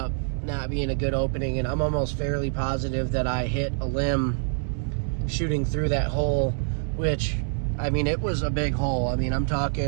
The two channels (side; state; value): left; silent; digital silence